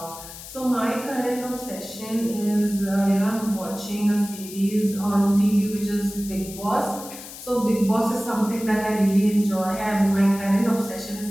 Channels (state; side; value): noise; left; hiss, 14 dB below the sound